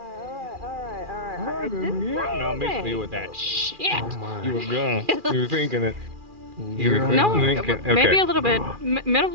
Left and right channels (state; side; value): late; left; 2.4 ms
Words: No, miss me with that shit. Oh You were gonna. You were thinking it. You were No, thinking. maybe Okay. a little bit. Middle.